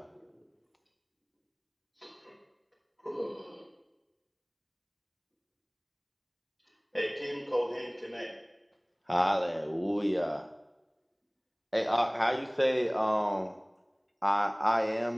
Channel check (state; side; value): identical; both; correlation 1.00